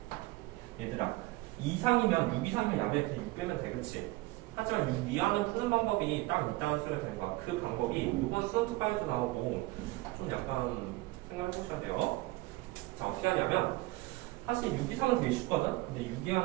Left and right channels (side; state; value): left; quieter; 20.4 dB